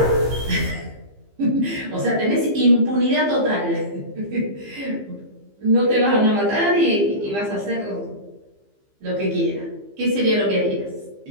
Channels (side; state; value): left; late; 15 ms